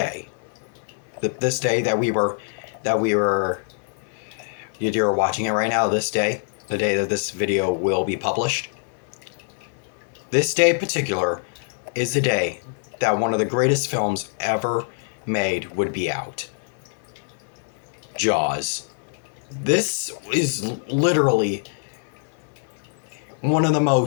this day that you're watching it right now, this day, the day that this video will be published, this day in particular is the day that one of the greatest films ever made would be out. Jaws. This is literally one of the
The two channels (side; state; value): right; silent; 62 dB below the other